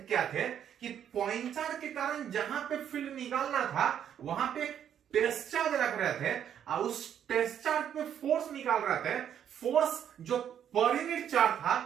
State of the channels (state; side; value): quieter; left; 9.3 dB